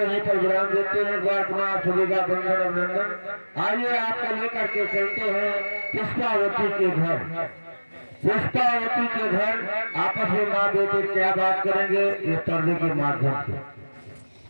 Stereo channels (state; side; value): inverted; both; correlation -1.00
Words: पर विराम देते हैं। द्वार कुमार सभी का बंधन अभिनंदन। आइए आपको लेकर के चलते हैं पुष्पावती के घर। पुष्पावती के घर आपस में माँ बेटे क्या बात करेंगे ये पर्दे के माध्यम से।